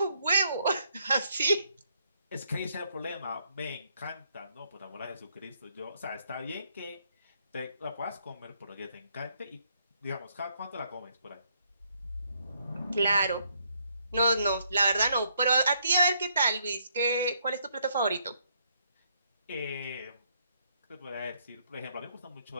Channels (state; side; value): inverted; both; correlation -0.72